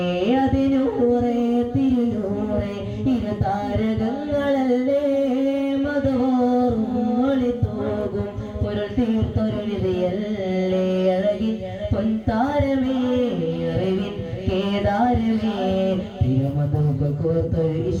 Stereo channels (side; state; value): both; identical; correlation 1.00